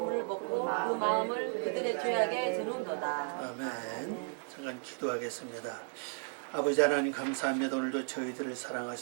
먹고 그 마음을 그들의 죄악에 드는도다. 아멘. 잠깐 기도하겠습니다. 아버지 하나님 감사합니다. 오늘도 저희들을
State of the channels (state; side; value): silent; left; 55 dB below the other